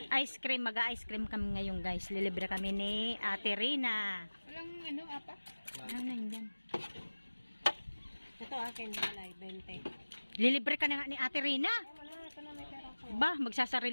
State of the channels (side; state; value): both; inverted; correlation -1.00